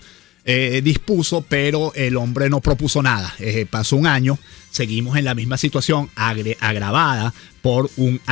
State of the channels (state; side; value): quieter; right; 17.8 dB